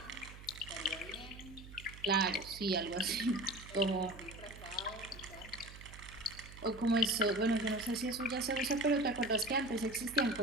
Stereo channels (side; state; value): right; noise; hum, 16 dB below the sound